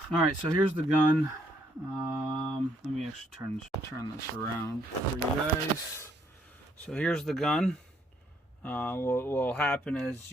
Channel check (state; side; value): normal; both; correlation 0.70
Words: Alright, so here's the gun. Let me actually turn this around for you guys. So here's the gun. What will happen is